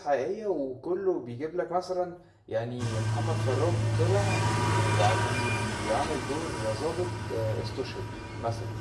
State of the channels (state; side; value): identical; both; correlation 1.00